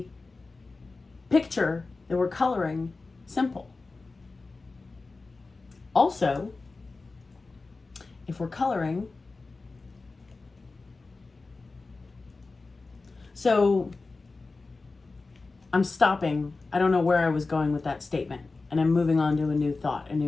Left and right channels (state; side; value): quieter; right; 3.7 dB